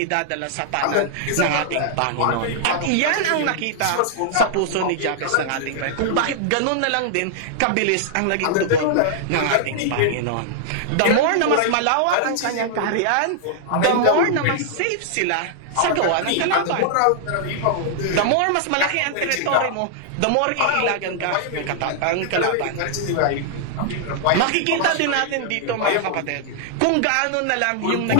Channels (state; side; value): different; both; correlation -0.01